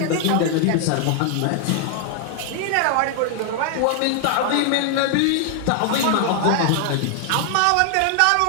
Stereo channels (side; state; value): both; different; correlation 0.00